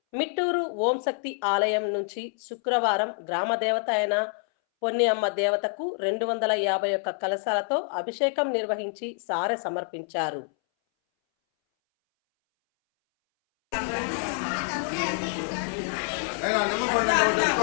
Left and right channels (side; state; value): right; silent; 60 dB below the other